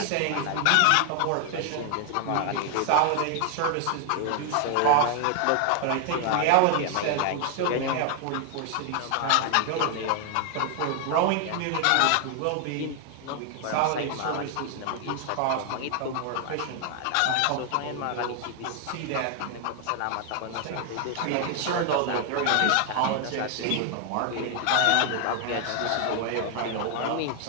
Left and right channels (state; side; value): different; both; correlation 0.00